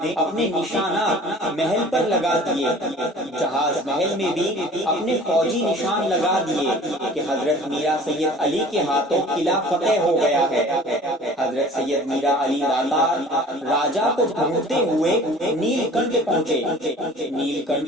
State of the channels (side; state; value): both; normal; correlation 0.46